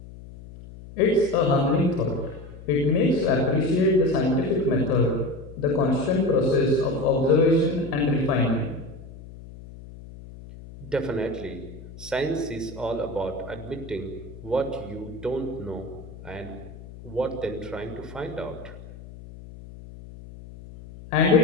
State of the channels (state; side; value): noise; left; hum, 16 dB below the sound